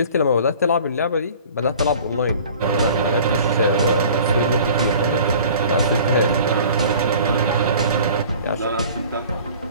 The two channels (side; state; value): both; inverted; correlation -0.46